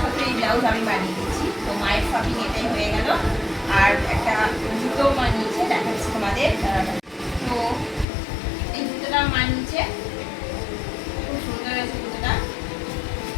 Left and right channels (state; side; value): drops out; right; at 8.1 s